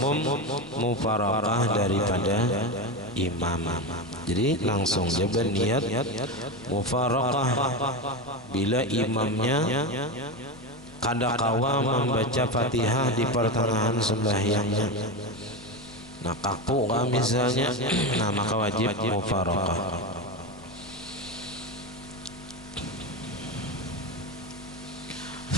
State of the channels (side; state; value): left; noise; rumble, 24 dB below the sound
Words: mufaraqah daripada imam. Jadi langsung dia berniat mufaraqah bila imamnya kadakawa membaca Fatihah di pertengahan sembahyangnya. Nah kaku kan misalnya, nah maka wajib mufaraqah.